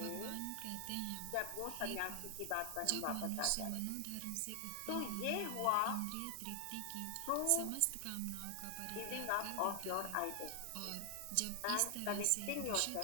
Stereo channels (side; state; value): both; different; correlation 0.00